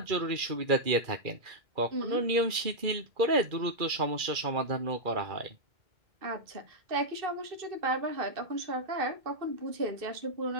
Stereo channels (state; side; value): late; left; 2.4 ms